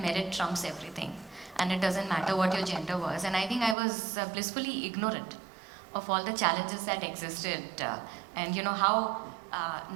merit trumps everything and it doesn't matter what your gender was. And I think I was blissfully ignorant of all the challenges that existed and how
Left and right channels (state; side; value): drops out; left; at 3.8 s